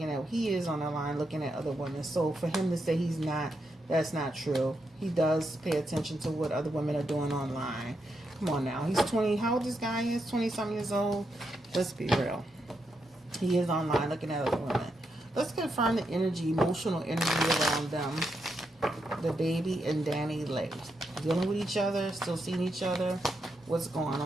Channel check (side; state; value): both; normal; correlation 0.83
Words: he is on the line looking at other women. So for him to say he's not, that's not true. He does pay attention to what other women are doing online. Come on now. He's 20. How old this guy is? 20-something years old. Let's be real. He is online looking at other women. Let's confirm the emotional energy around them. The baby and Danny Lay. Dealing with each other, still seeing each other. What's going